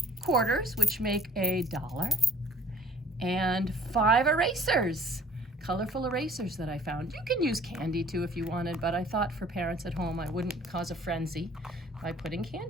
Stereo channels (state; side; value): normal; both; correlation 0.55